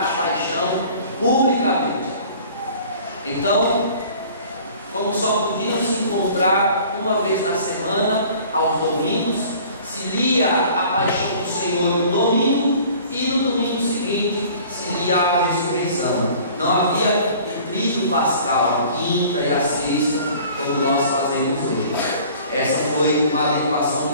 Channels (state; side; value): inverted; both; correlation -0.49